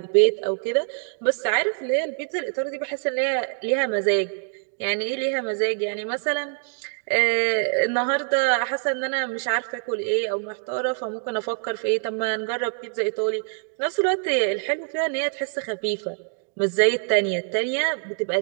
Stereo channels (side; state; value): left; silent; 62 dB below the other